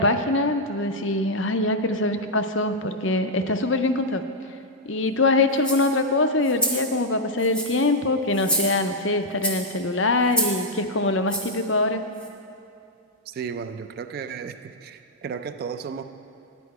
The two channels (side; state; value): both; normal; correlation -0.04